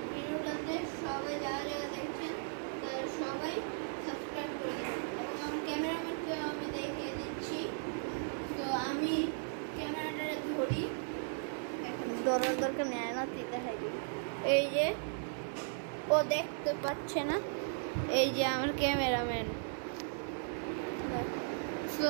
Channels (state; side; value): silent; left; 53 dB below the other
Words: ভিডিওটাতে সবাই যারা যারা দেখছেন তারা সবাই সাবস্ক্রাইব করে দেবেন। এবং আমার ক্যামেরাম্যানকে আমি দেখিয়ে দিচ্ছি। তো আমি ক্যামেরাটা ধরি, এখন ধরার দরকার নেয় না, দেখাই দিই। এই যে ও দেখতে পাচ্ছে না, এই যে আমার ক্যামেরাম্যান।